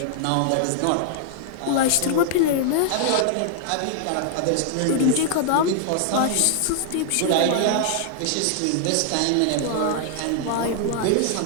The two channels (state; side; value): different; both; correlation 0.00